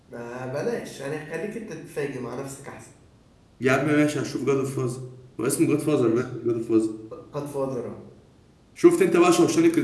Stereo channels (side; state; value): both; identical; correlation 1.00